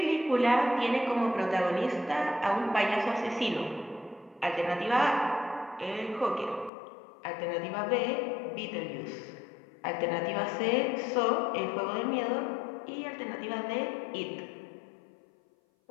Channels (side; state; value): right; drops out; at 6.7 s